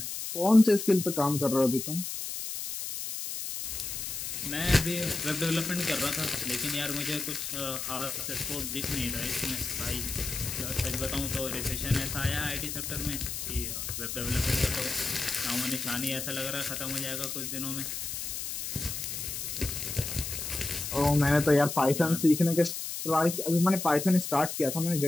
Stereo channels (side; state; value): left; noise; hiss, 5 dB below the sound